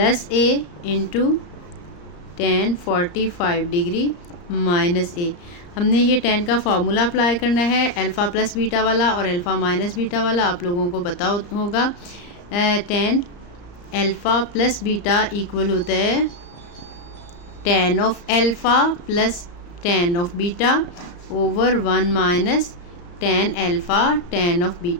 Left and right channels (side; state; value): right; late; 34 ms